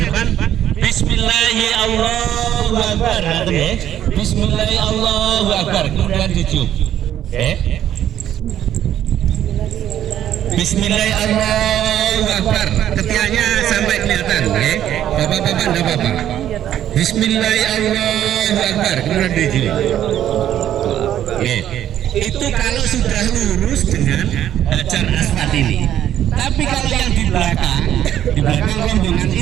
depan Bismillahirrahmanirrahim ya. Bismillahirrahmanirrahim kemudian dicium. Bismillahirrahmanirrahim ketiaknya sampai kelihatan ya. Bapak-bapak enggak apa-apa. Bismillahirrahmanirrahim kemudian dicium. Itu kalau sudah lurus dengan Hajar Aswad ini. Tapi kalau yang di belakang rombongan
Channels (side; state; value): left; quieter; 11.1 dB